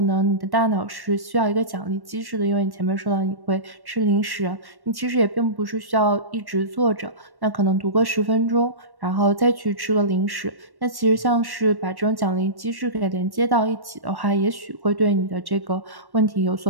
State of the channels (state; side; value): late; left; 1.1 ms